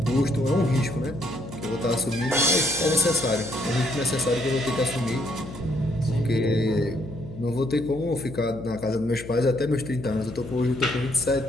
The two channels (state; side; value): noise; left; hum, 14 dB below the sound